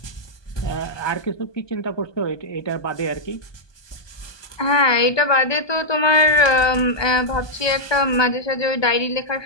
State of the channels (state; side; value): late; right; 1.2 ms